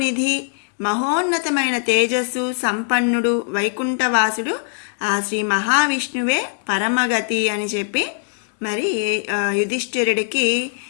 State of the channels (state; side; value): silent; right; 64 dB below the other